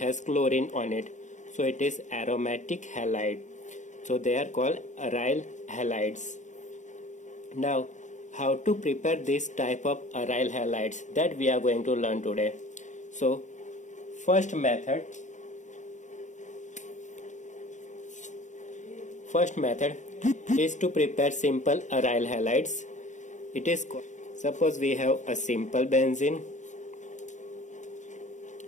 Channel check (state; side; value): late; right; 0.35 ms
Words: chlorine on it. So it is aromatic halide. So they are called aryl halides. Now how to prepare this type of aryl halides, that we are going to learn today. So first method is to prepare simple aryl halides. It is called, suppose we have a simple benzene.